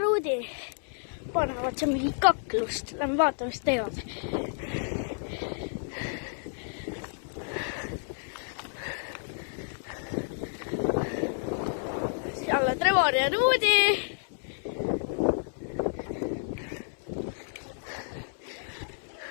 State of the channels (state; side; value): silent; right; 57 dB below the other